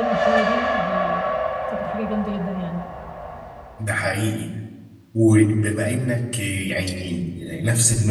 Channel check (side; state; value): both; identical; correlation 1.00